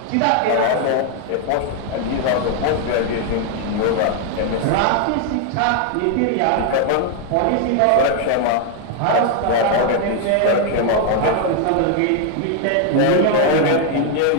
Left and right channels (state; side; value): different; both; correlation 0.01